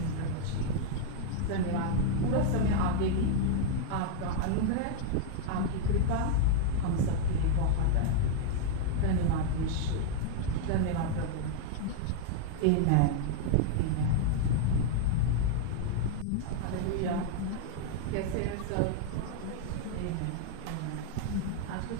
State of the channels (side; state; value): both; different; correlation 0.00